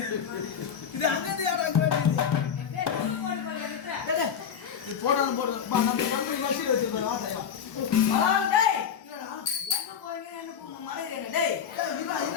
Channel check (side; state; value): right; quieter; 7.7 dB